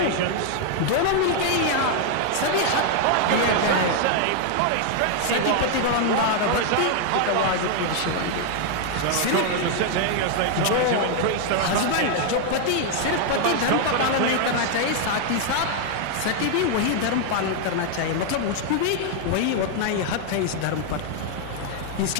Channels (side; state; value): both; different; correlation 0.00